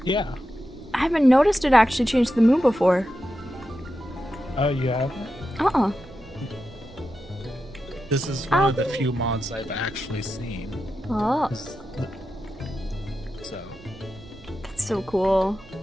Yeah. I haven't noticed it actually changed the moon before. Oh, you haven't? Uh-uh. This is one of the few mods I've actually seen. Oh. So. That's so cool.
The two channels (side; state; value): right; noise; rumble, 22 dB below the sound